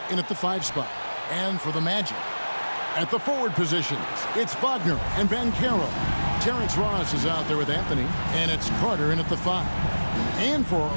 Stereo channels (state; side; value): inverted; both; correlation -1.00